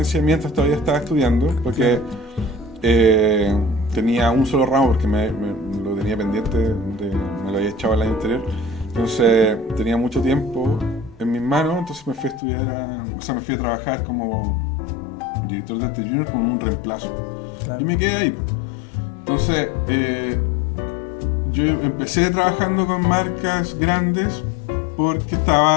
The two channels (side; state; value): right; drops out; at 12.4 s